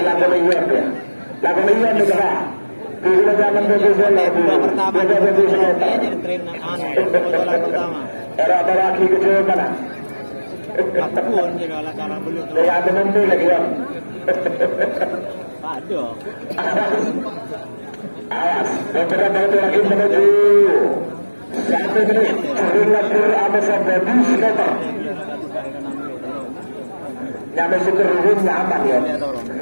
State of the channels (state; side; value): inverted; both; correlation -1.00